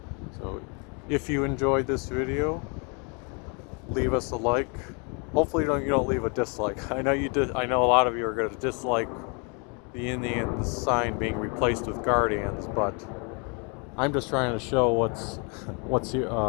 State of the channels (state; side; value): quieter; right; 35.1 dB